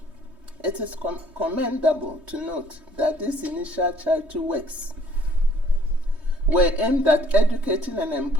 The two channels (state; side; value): late; left; 3.2 ms